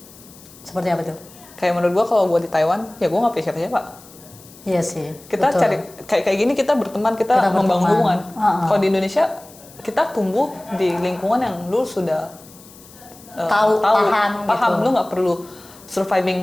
Seperti apa tuh? Kayak menurut gue kalau gue di Taiwan, ya gue nggak punya siapa-siapa. Iya sih. Kita betul. cari kayak gini, kita berteman, kita membangun hubungan. Kalau di Indonesia kita tumbuh di lingkungan yang lu sudah paham gitu. Lu nggak perlu surviving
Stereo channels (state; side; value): noise; left; hiss, 22 dB below the sound